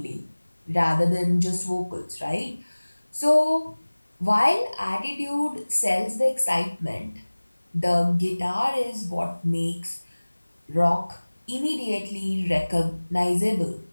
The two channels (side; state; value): both; inverted; correlation -1.00